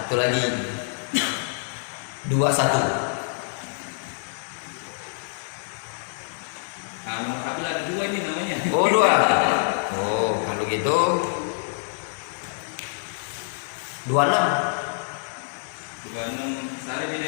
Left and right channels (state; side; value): silent; right; digital silence